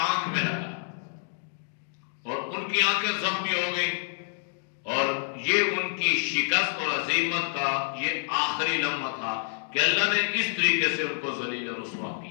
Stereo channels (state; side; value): silent; right; 59 dB below the other